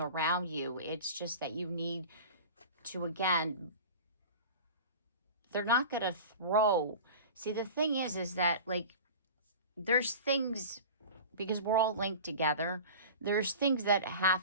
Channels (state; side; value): inverted; both; correlation -0.36